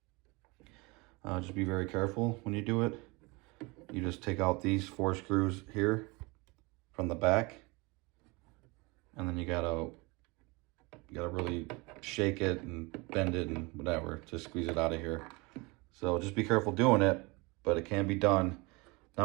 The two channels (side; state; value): left; quieter; 25.9 dB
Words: Just be very careful when you do it. You just take out these 4 screws here from the back, and then you gotta really shake it and bend it and whatever to squeeze it out of here. So just be careful doing it, but it can be done. Now